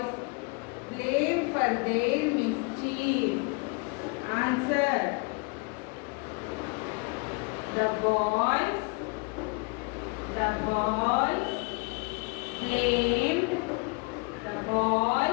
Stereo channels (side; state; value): right; quieter; 31.2 dB